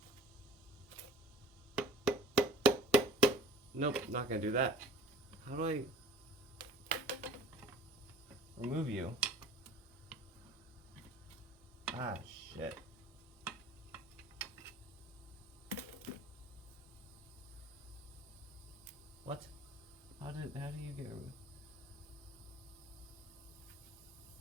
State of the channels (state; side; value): normal; both; correlation 0.45